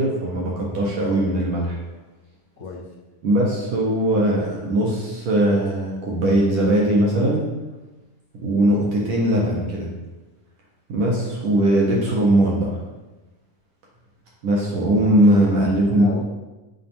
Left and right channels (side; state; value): left; late; 10 ms